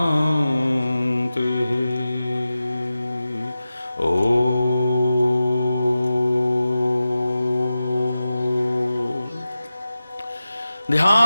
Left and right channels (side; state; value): both; inverted; correlation -0.94